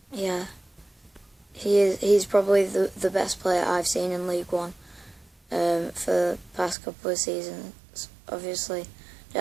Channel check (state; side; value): drops out; left; at 6.8 s